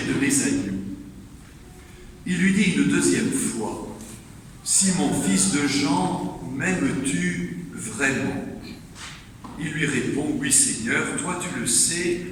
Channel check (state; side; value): identical; both; correlation 1.00